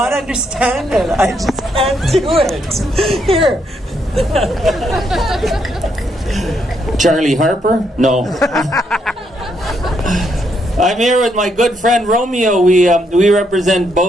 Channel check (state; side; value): normal; both; correlation 0.76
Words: understand it. I just can't do it. Here. Charlie Harper? No. I'm here with my good friend Romeo. We represent